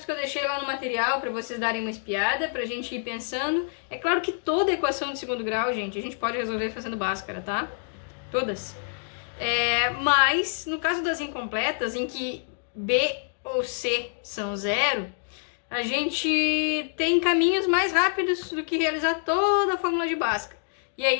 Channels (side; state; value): right; silent; digital silence